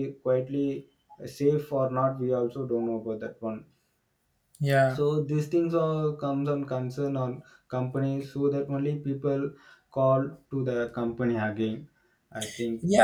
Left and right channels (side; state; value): both; identical; correlation 1.00